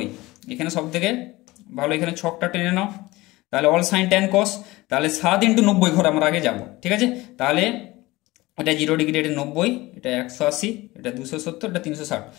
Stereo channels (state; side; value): quieter; right; 19.9 dB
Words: এখানে সব থেকে ভালো এখানে ছকটা টেনে নাও, তাহলে অল সাইন ট্যান কস, তাহলে 7 ইন্টু 90 ঘর আমরা আগে যাব, ঠিক আছে। তাহলে এটা 0 ডিগ্রি, এটা 90, এটা 180, এটা 270, এটা 360,